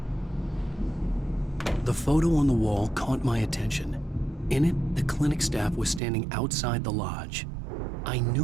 The photo on the wall caught my attention. In it, the clinic staff was standing outside the lodge. I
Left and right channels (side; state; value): left; drops out; at 6.0 s